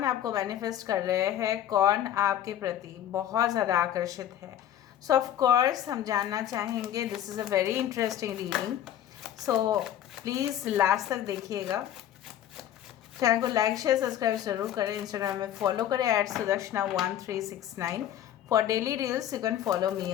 आपको मैनिफेस्ट कर रहे हैं, कौन आपके प्रति बहुत ज़्यादा आकर्षित है। सो ऑफ कोर्स हम जानना चाहेंगे। This is a very interesting reading, so please last तक देखिएगा। चैनल को लाइक शेयर सब्सक्राइब जरूर करें। इंस्टाग्राम में फॉलो करें @sudarshana1369। For daily reels you can follow me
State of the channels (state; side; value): quieter; right; 11.2 dB